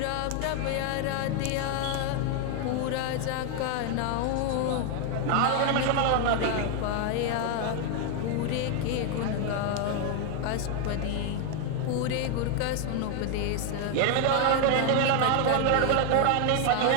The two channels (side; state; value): both; different; correlation 0.01